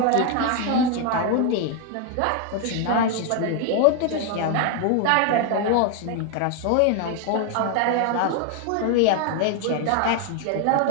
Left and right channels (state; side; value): different; both; correlation 0.01